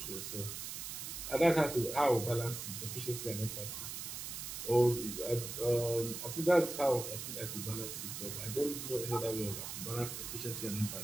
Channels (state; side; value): noise; right; hiss, 6 dB below the sound